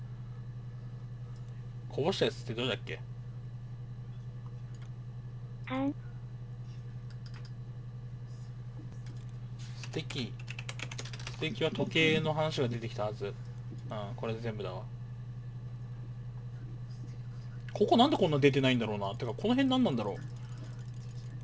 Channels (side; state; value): both; identical; correlation 1.00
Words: こぼしたやつってどれだっけ？感。素敵。素敵は時計の話が出てきたはず。うん、これで全部だわ。ここなんでこんな出てないんだろうな。てか、この辺何なんだろう。